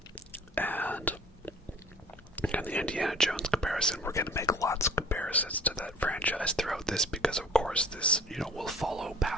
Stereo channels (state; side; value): normal; both; correlation 0.50